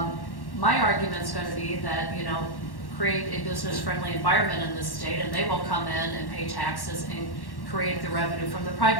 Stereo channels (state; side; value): late; right; 1.1 ms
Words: argument is going to be that, create a business-friendly environment in this state, and they will come in and pay taxes and create the revenue from the